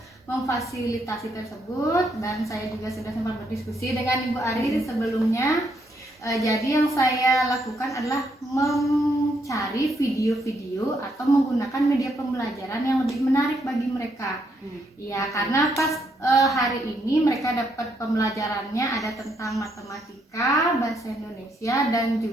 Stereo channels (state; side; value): normal; both; correlation 0.75